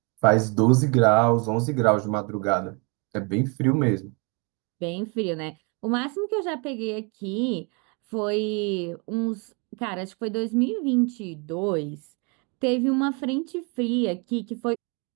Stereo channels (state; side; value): quieter; left; 32.8 dB